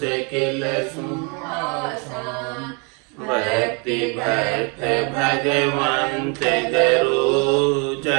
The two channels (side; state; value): left; quieter; 34.3 dB